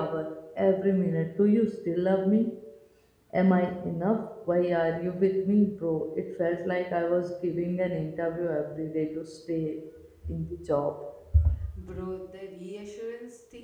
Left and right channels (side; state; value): both; identical; correlation 1.00